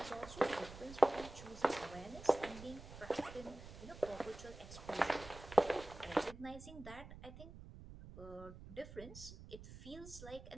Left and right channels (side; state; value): right; noise; rumble, 14 dB below the sound